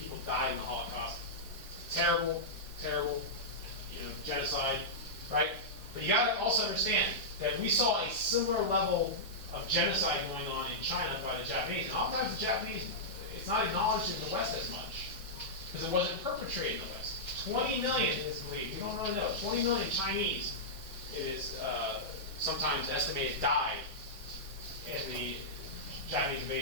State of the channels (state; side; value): normal; both; correlation -0.11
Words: died in the Holocaust. Terrible, genocide, right? But you got to also understand that we saw a similar level of genocide going on in China by the Japanese. And oftentimes the Japanese, it's not acknowledged in the West as much, because it wasn't perpetrated in the West. 20 million is believed, we don't really know, 20 million Chinese, it is sometimes estimated, died in the Japanese